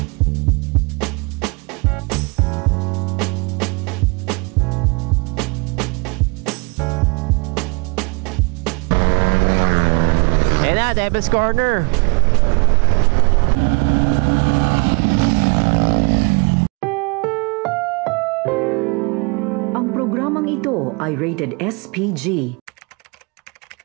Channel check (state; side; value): quieter; left; 32.4 dB